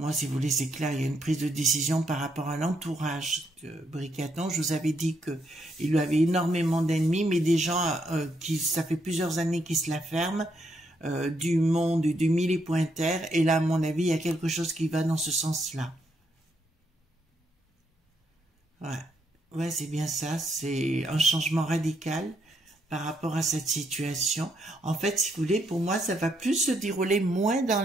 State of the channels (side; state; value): both; normal; correlation 0.76